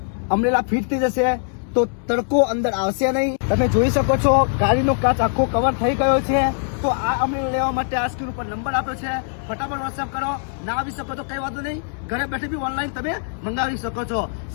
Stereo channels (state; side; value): silent; right; 64 dB below the other